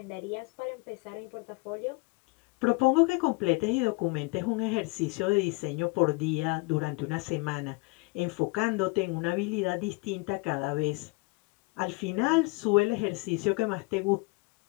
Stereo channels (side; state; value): right; quieter; 27.5 dB